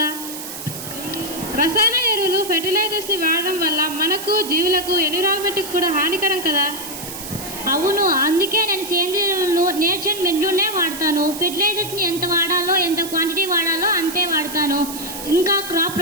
రసాయన ఎరువులు ఫెర్టిలైజర్స్ని వాడడం వల్ల మనకు, జీవులకు, ఎన్విరాన్మెంట్కి కూడా హానికరం కదా. అవును, అందుకే నేను సేంద్రియ ఎరువులను నేచర్ మెన్యూనే వాడతాను. ఫెర్టిలైజర్స్ని ఎంత వాడాలో, ఎంత క్వాంటిటీ వాడాలో అంతే వాడతాను. ఇంకా crop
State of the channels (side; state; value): right; noise; hiss, 9 dB below the sound